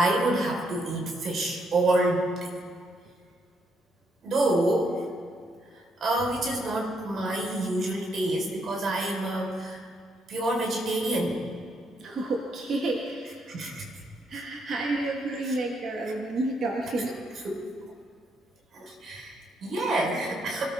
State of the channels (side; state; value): both; normal; correlation 0.75